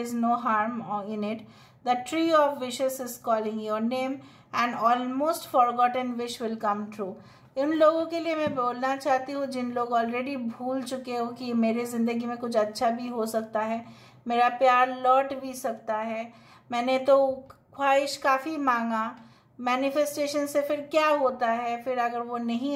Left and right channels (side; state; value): both; identical; correlation 1.00